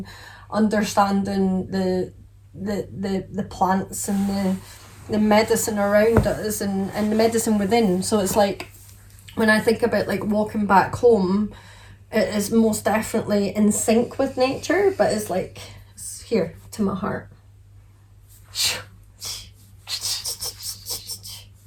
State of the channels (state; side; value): identical; both; correlation 1.00